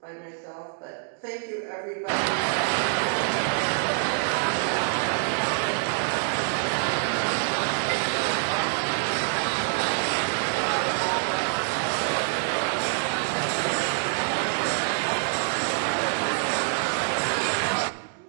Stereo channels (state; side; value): silent; left; digital silence